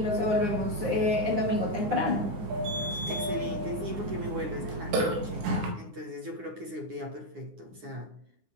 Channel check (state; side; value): late; left; 9.7 ms